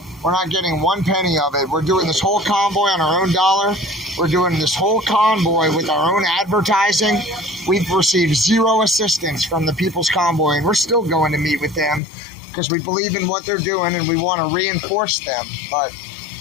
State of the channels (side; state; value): right; drops out; at 12.0 s